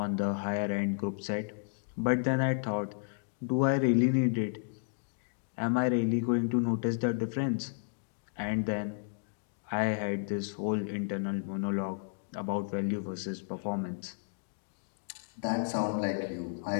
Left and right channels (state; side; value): silent; right; digital silence